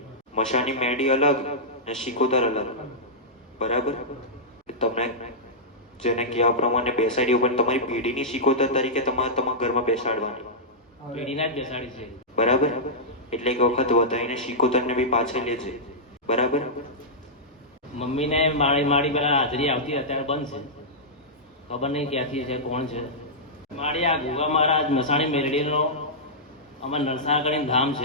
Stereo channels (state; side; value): normal; both; correlation -0.12